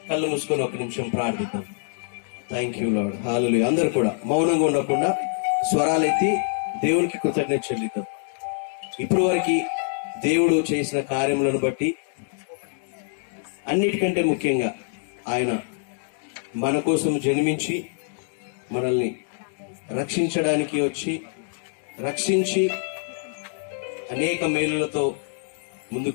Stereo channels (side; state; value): right; silent; 62 dB below the other